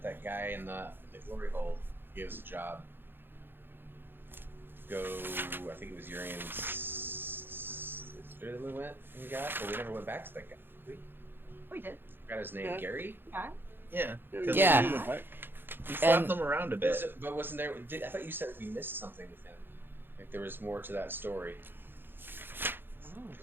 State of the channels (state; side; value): late; left; 0.10 ms